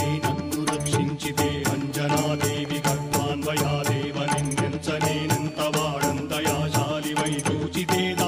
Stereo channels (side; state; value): both; identical; correlation 1.00